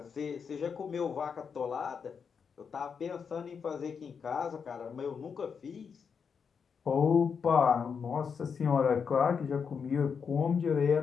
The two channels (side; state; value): right; quieter; 6.3 dB